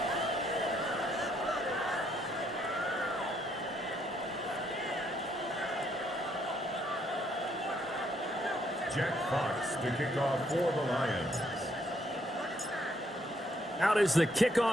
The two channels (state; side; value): normal; both; correlation 0.71